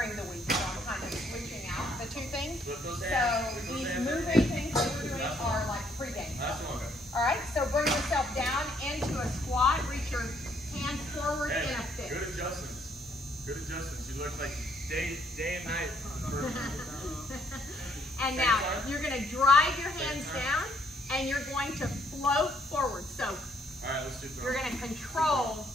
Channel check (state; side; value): normal; both; correlation 0.69